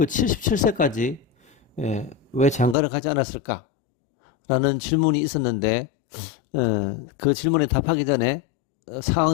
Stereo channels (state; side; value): drops out; right; at 2.8 s